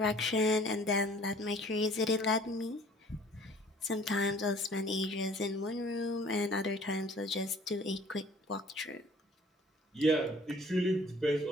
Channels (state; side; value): normal; both; correlation 0.53